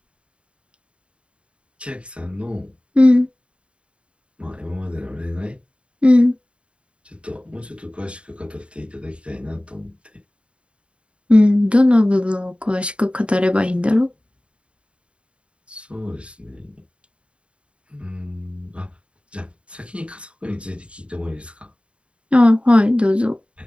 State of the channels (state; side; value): late; left; 0.058 ms